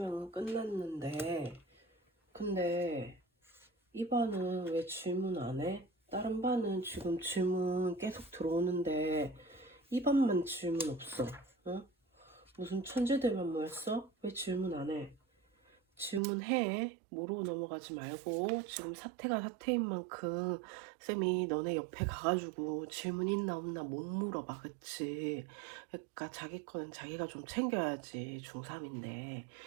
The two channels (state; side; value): drops out; left; at 16.2 s